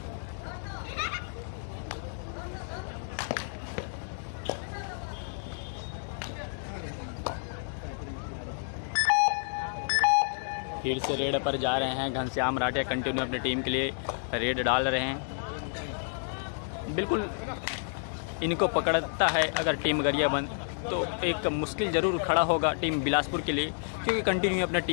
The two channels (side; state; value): right; silent; digital silence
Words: फिर से रेड पर जा रहे हैं घनश्याम राठिया, कंटिन्यू अपनी टीम के लिए रेड डाल रहे हैं। बिल्कुल इनको पकड़ता है अगर टीम गरियाबंद तो एक मुश्किल जरूर खड़ा होगा टीम बिलासपुर के लिए, क्योंकि कंटिन्यू अपने